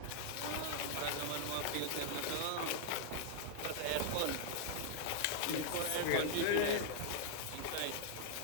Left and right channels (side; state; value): both; different; correlation -0.01